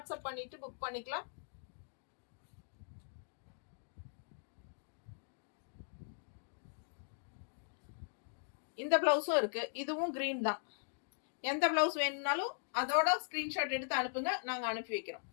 பண்ணிட்டு புக் பண்ணிக்கலாம். இந்த பிளவுஸும் இருக்கு, இதுவும் கிரீன் தான். எந்த பிளவுஸ் வேணும்னாலும் அதோட ஸ்கிரீன்ஷாட் எடுத்து அனுப்புங்க, நாங்க அனுப்பி வைக்கிறோம்.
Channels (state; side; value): silent; right; digital silence